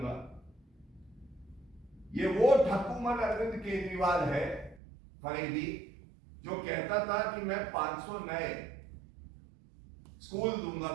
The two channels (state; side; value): drops out; left; at 4.8 s